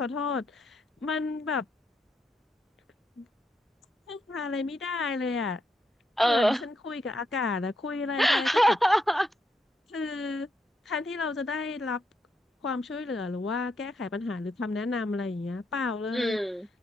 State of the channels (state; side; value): normal; both; correlation 0.80